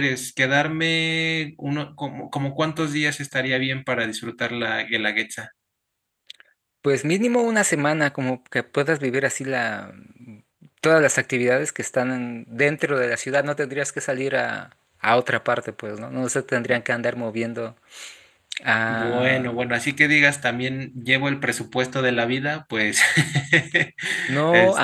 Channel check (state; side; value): identical; both; correlation 1.00